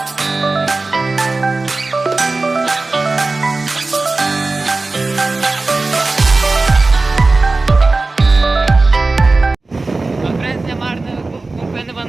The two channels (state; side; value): quieter; left; 3.4 dB